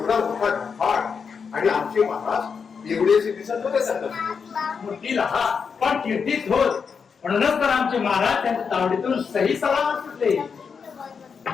मोठा घाट आणि आमचे महाराज एवढेचे दिसत होते. मूर्ती लहा पण कीर्तीच होत. म्हणूनच तर आमचे महाराज त्यांच्या तावडीतून सही सलामत सुटले.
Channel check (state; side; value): quieter; right; 6.0 dB